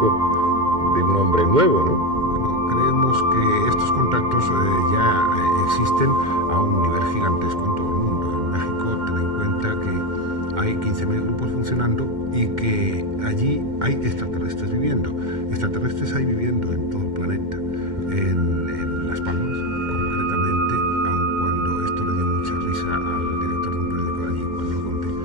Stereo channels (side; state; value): left; late; 2.1 ms